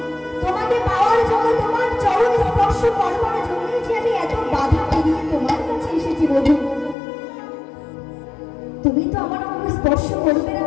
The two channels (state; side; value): drops out; right; at 7.0 s